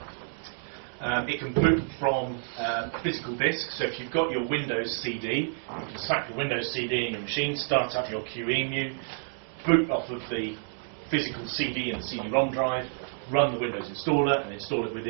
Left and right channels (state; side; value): silent; left; digital silence